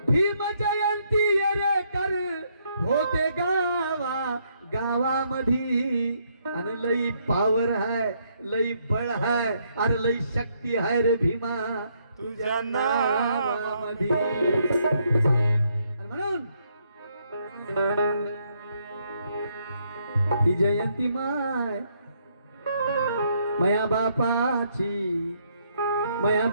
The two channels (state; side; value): inverted; both; correlation -0.73